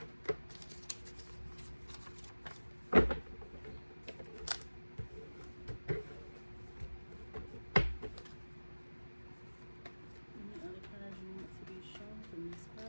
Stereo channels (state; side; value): inverted; both; correlation -1.00